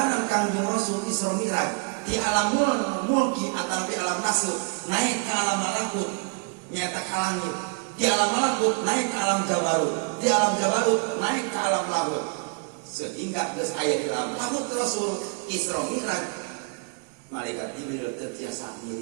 Kanjeng Rasul Isra Mi'raj di alam mulki atau di alam nasib naik ke alam malakut nyata ke langit di alam malakut naik ke alam jabarut di alam jabarut naik ke alam lahut sehingga geus aya di alam lahut Rasul Isra Mi'raj malaikat Jibril teu tiasa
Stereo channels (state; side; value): quieter; left; 35.0 dB